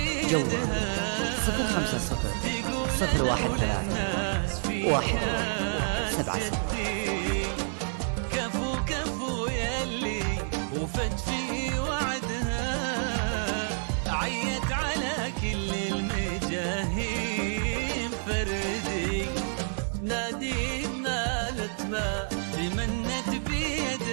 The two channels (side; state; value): left; silent; 59 dB below the other